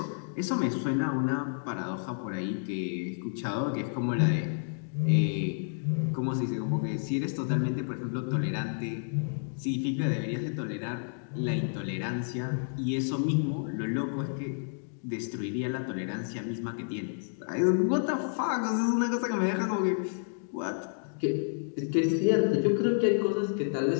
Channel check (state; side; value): silent; right; digital silence